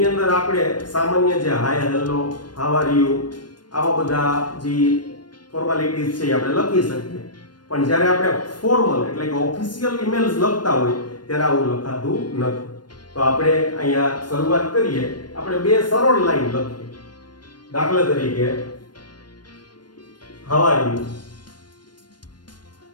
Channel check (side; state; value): right; late; 0.71 ms